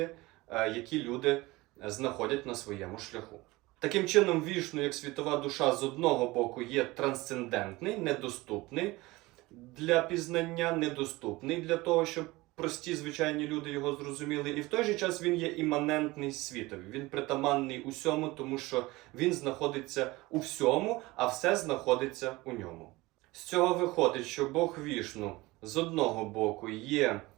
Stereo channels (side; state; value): left; quieter; 20.9 dB